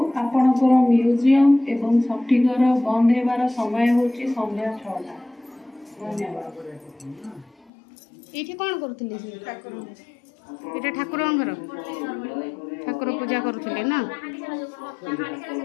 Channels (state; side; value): drops out; right; at 7.7 s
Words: ଆପଣଙ୍କର ମ୍ୟୁଜିୟମ ଏବଂ ସଠିକର ବନ୍ଦ ହେବାର ସମୟ ହେଉଛି ସନ୍ଧ୍ୟା 6ଟା। ଧନ୍ୟବାଦ। ଏଇଠି କ'ଣ କରୁଥିଲେ? ଏଇଟା ଠାକୁରଙ୍କ ଘର, ଠାକୁର ପୂଜା କରୁଥିଲେ ନା?